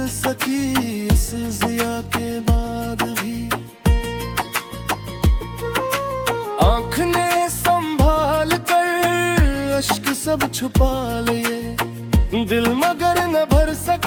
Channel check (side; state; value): both; identical; correlation 1.00